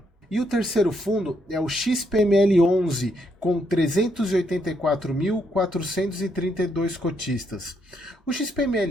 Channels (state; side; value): normal; both; correlation 0.75